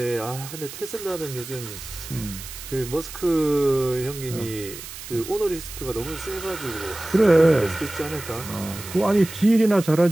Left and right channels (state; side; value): noise; right; hiss, 12 dB below the sound